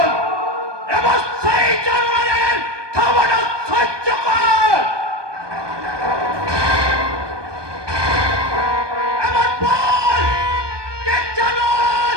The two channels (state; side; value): late; left; 1.2 ms